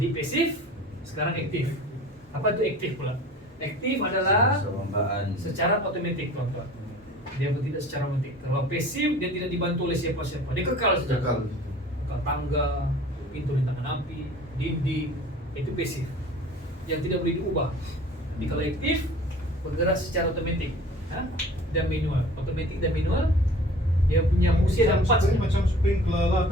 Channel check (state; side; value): normal; both; correlation 0.45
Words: pasif, sekarang aktif. Apa itu aktif pula? Aktif adalah Perlombaan. secara otomatik tuan-tuan. Dia tidak secara otomatik. Kalau pasif, dia tidak dibantu oleh siapa-siapa. Dia kekal saja. Kekal tangga, pintu rintangan api, dinding, itu pasif. Yang tidak boleh diubah. Jadi kalau aktif, bergerak secara otomatik. Dan manual. Otomatik dan manual, dia punya fungsi ada 4 saja. Macam sprinkler lah